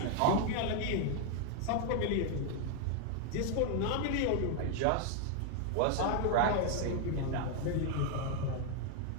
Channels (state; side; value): different; both; correlation 0.01